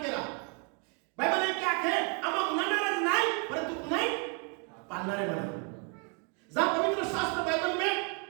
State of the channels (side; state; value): left; quieter; 36.2 dB